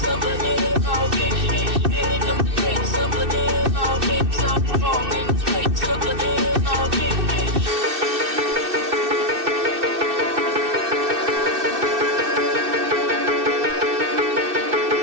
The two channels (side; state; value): left; late; 2.6 ms